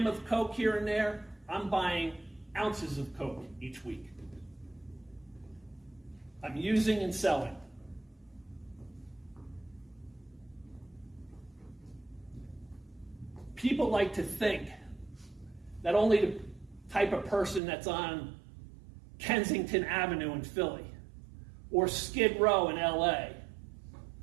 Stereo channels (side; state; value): left; drops out; at 17.6 s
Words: of coke here and there, I'm buying ounces of coke each week. I'm using and selling. People like to think that only the type of person that's on Kensington Avenue in Philly, or Skid Row in LA,